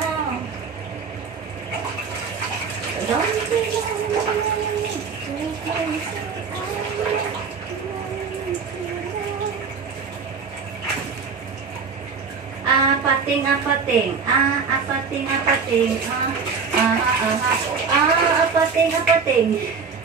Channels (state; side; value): quieter; left; 5.4 dB